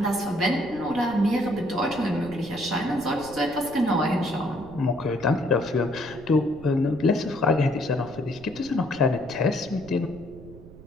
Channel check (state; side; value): noise; right; rumble, 18 dB below the sound